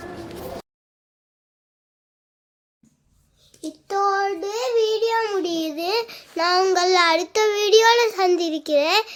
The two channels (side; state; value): both; identical; correlation 1.00